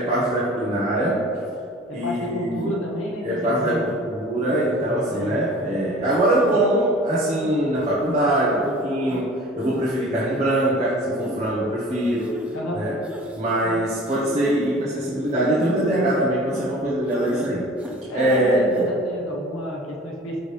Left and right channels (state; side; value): normal; both; correlation 0.43